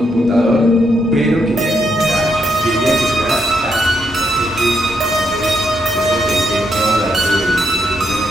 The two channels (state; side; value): normal; both; correlation 0.77